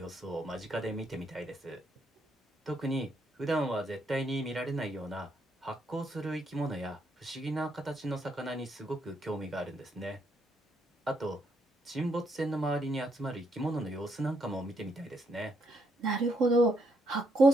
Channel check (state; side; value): normal; both; correlation 0.76